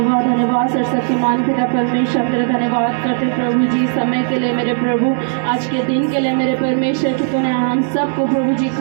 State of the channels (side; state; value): left; silent; digital silence